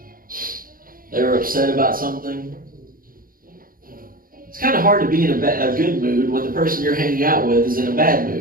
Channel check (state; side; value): late; left; 0.41 ms